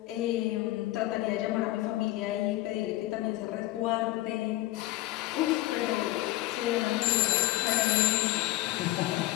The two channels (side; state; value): right; quieter; 17.7 dB